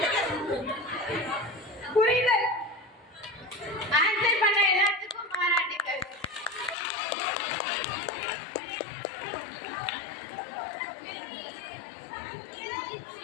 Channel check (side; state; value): right; drops out; at 6.8 s